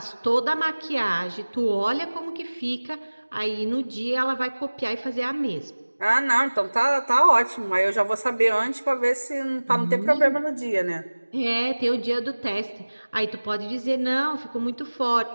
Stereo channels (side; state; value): both; inverted; correlation -1.00